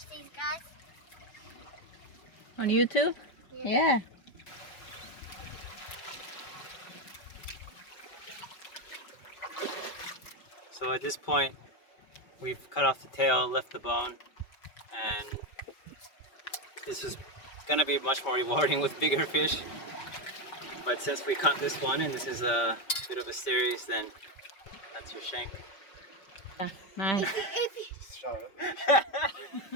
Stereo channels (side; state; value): right; late; 5.1 ms